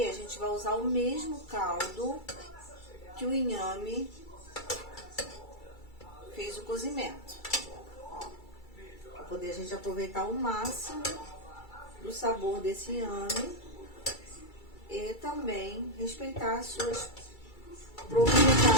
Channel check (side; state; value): right; late; 2.3 ms